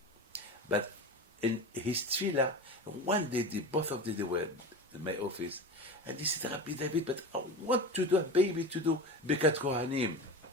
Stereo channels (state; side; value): normal; both; correlation 0.28